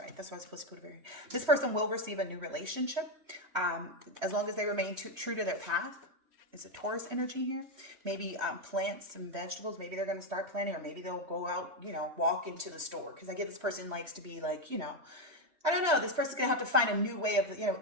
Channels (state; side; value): late; left; 3.1 ms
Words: That's why I was supposed to put it very. This person will receive a new relationship, as long as they remain true to their path. It's a Taurus energy here. Maybe plant some vegetables. Maybe they're going to start planting, or maybe they'll go out, walk into the store. Because I get this person likes to be like, I don't know. This person's going to have to find a new way of,